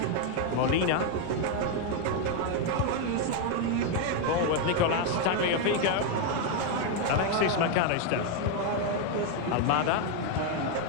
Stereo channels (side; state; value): both; different; correlation 0.01